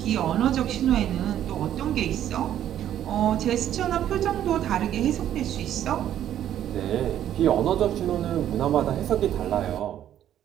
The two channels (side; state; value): left; quieter; 11.1 dB